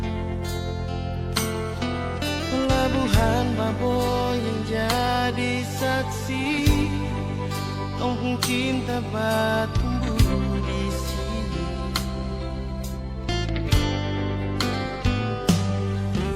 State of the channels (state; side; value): identical; both; correlation 1.00